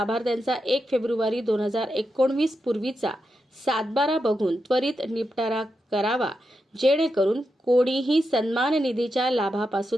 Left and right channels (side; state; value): both; normal; correlation 0.87